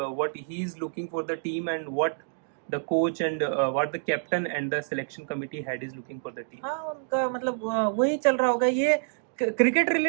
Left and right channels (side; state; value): left; silent; digital silence